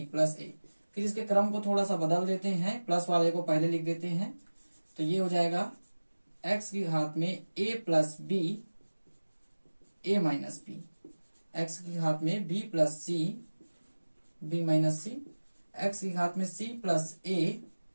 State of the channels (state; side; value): inverted; both; correlation -1.00